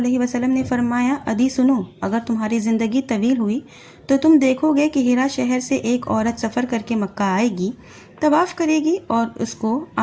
وسلم نے فرمایا، عدی سنو، اگر تمہاری زندگی طویل ہوئی تو تم دیکھو گے کہ ہیرا شہر سے ایک عورت سفر کر کے مکہ آئے گی، طواف کرے گی، اور اس کو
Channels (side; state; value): both; identical; correlation 1.00